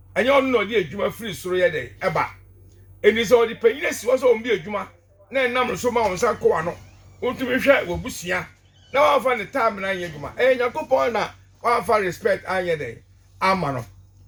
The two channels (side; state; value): both; identical; correlation 1.00